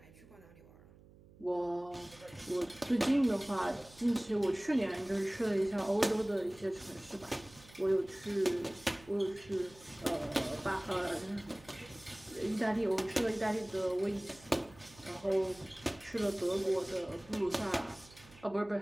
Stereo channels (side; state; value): right; noise; hum, 23 dB below the sound